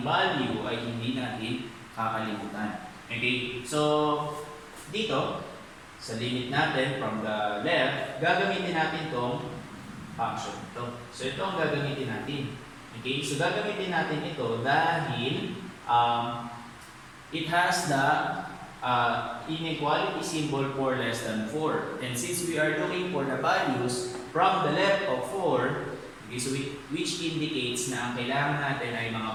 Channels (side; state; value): both; identical; correlation 1.00